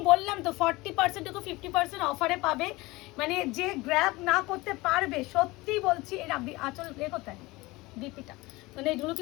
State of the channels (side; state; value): right; quieter; 21.5 dB